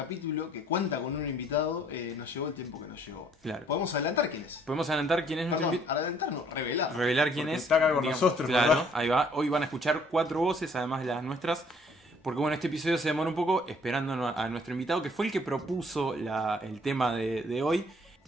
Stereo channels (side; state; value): both; normal; correlation 0.61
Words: que cuenta con un invitado, nos llevó el tiempo que nos llevó. Claro. ¿Podemos adelantar quién es? Podemos adelantar quién es nuestro Perdón, invitado. adelantar no, revelar. Revelar quién Porque es. está acá con Digamos, nosotros, claro, ¿verdad? ahí va. Hoy van a escuchar 4 voces, además de las nuestras. Porque bueno, este episodio se demora un poco esperando a nuestro invitado, que fue el que propuso el tema de hoy.